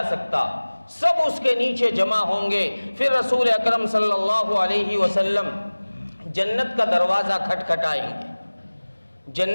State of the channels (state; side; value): inverted; both; correlation -1.00